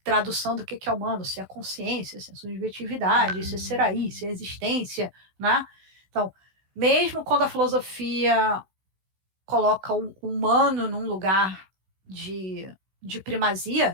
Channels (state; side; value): late; left; 16 ms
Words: tradução do que é humano, se é consciência, se é subjetividade, se é ser aí, se é existência, né? Então, mesmo quando a filosofia coloca o humano num lugar de